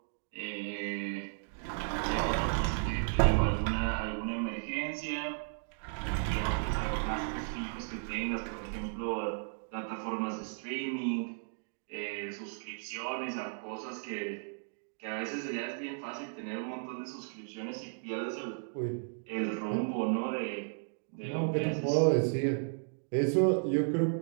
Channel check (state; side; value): silent; left; digital silence